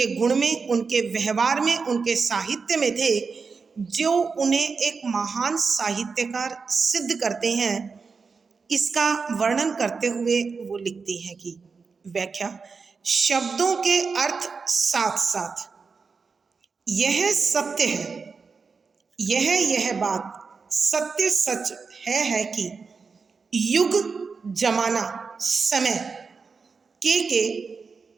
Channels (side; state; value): left; quieter; 5.0 dB